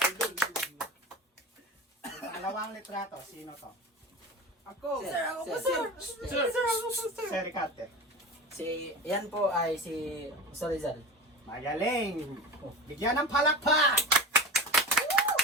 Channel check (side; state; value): both; normal; correlation 0.32